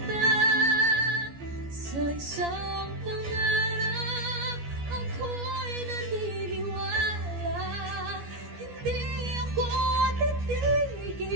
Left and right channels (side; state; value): left; late; 14 ms